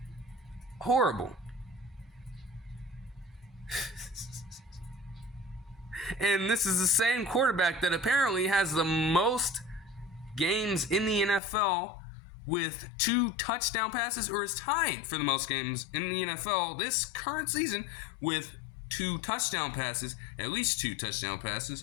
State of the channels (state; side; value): drops out; right; at 11.4 s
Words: Horrible. And this is the same quarterback that apparently has the most games in the NFL with 2 touchdown passes, or is tied for the most games in the NFL this current season with 2 touchdown passes, at least 2 touchdown passes,